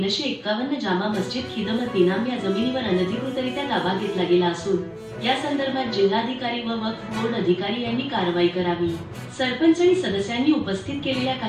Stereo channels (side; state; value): both; identical; correlation 1.00